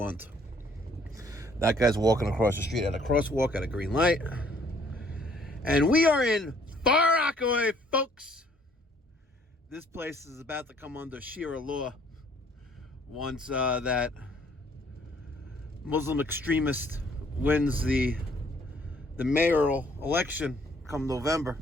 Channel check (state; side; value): normal; both; correlation 0.62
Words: That guy's walking across the street at a crosswalk at a green light. And we are in Far Rockaway, folks. This place is about to come under Sharia law once that Muslim extremist wins the mayoral election come November.